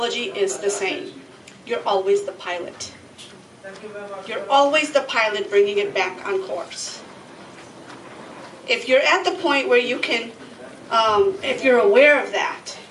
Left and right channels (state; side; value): identical; both; correlation 1.00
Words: is the same. You're always the pilot. You're always the pilot bringing it back on course. If you're at the point where you can, if you're aware of that,